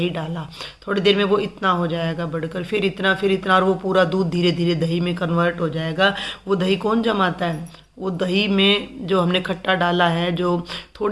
डाला, थोड़ी देर में वो इतना हो जाएगा बढ़कर, फिर इतना और वो पूरा दूध धीरे धीरे दही में कन्वर्ट हो जाएगा। वो दही कौन जमाता है? वो दही में जो हमने खट्टा डाला है, जो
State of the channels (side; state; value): both; identical; correlation 1.00